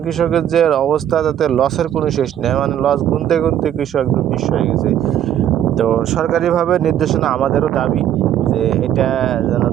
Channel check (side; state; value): left; quieter; 10.7 dB